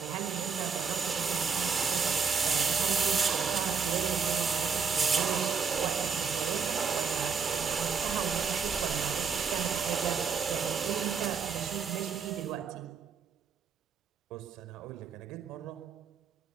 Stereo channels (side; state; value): left; quieter; 6.0 dB